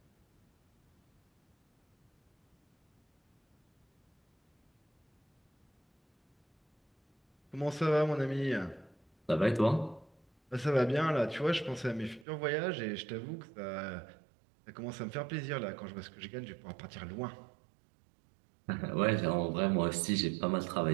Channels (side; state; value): left; drops out; at 12.2 s